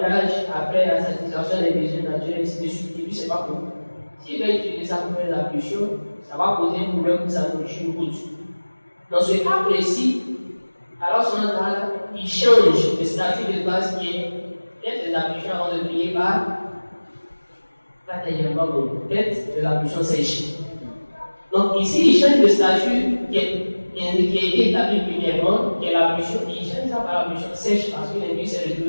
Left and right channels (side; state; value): both; inverted; correlation -1.00